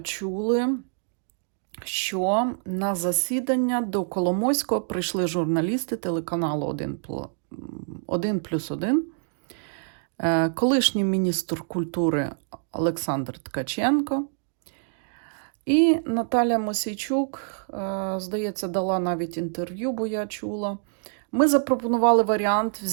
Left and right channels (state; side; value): silent; left; digital silence